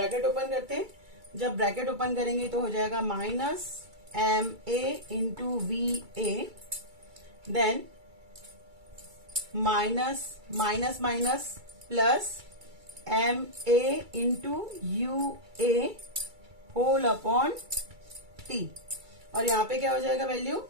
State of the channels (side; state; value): left; late; 2.3 ms